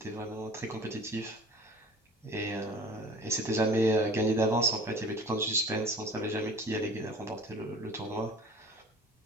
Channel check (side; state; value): both; normal; correlation 0.43